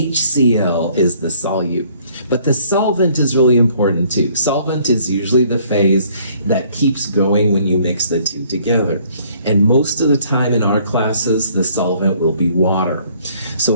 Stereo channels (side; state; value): both; inverted; correlation -0.61